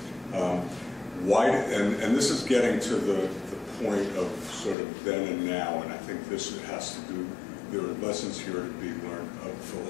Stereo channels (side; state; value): right; drops out; at 4.8 s